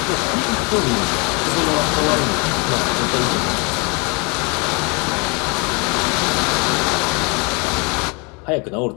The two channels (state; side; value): quieter; right; 31.0 dB